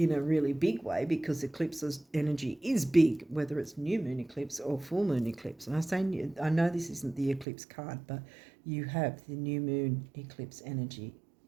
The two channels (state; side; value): drops out; left; at 7.5 s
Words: a really big way, because eclipse's energy is big, whether it's new moon eclipse or full moon eclipse. And I know this isn't the eclipse card, but you have the new moon eclipse energy